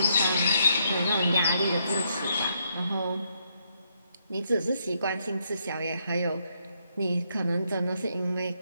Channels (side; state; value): both; inverted; correlation -0.75